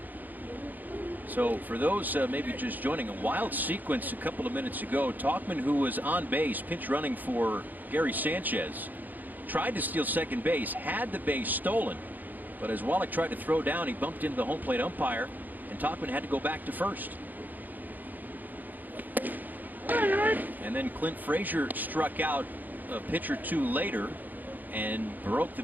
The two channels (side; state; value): left; late; 0.085 ms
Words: So for those maybe just joining, a wild sequence a couple of minutes ago. Tauchman, who was on base pinch running for Gary Sanchez, tried to steal second base, had the base stolen, but as Wallach tried to throw down, he bumped into the home plate umpire, and Tauchman had to go back to first. And then Clint Frazier struck out a pitch or 2 later and broke the